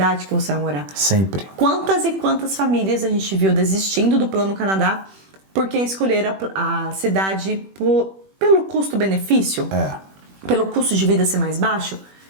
que você vai morar. Sempre. Quantas e quantas famílias a gente viu desistindo do Plano Canadá porque escolheram a cidade pelo custo-benefício? Pelo custo de vida ser mais baixo,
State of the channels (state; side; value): late; left; 21 ms